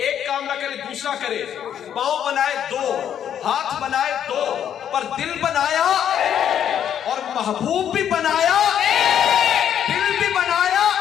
کام نہ کرے دوسرا کرے، پاؤں بنائے دو، ہاتھ بنائے دو، پر دل بنایا اور محبوب بھی بنایا، دل بھی بنایا،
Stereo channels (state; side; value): quieter; right; 9.5 dB